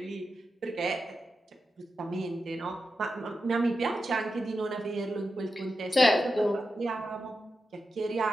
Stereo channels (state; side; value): normal; both; correlation 0.89